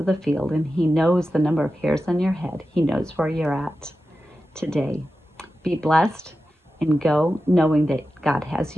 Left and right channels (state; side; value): normal; both; correlation 0.92